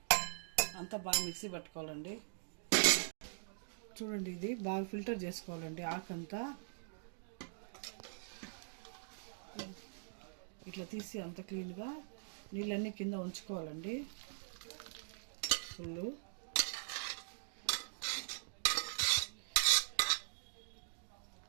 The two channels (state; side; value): silent; left; digital silence